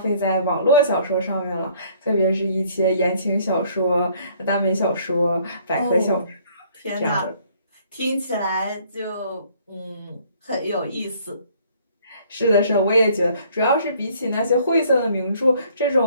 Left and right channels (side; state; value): both; inverted; correlation -0.60